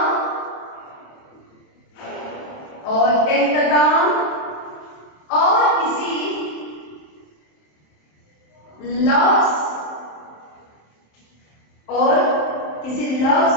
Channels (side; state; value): right; late; 27 ms